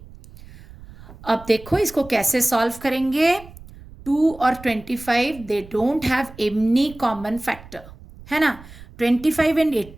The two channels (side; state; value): right; noise; rumble, 19 dB below the sound